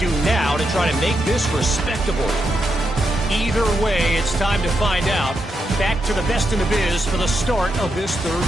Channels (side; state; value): both; normal; correlation 0.83